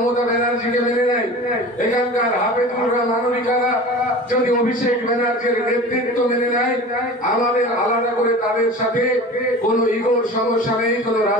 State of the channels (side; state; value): both; normal; correlation 0.37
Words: ব্যানার্জিকে মেনে নেয়, এখানকার হাফেজুলরা মানবিকারা যদি অভিষেক ব্যানার্জির নেতৃত্ব মেনে নেয়, আমাদের আলাদা করে তাদের সাথে কোনো ইগোর সমস্যা নেই, কোনো